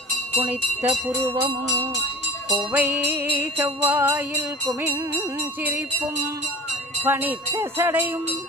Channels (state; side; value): normal; both; correlation 0.39